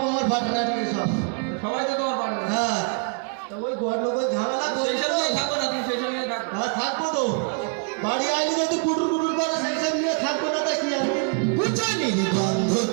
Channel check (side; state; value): left; quieter; 39.6 dB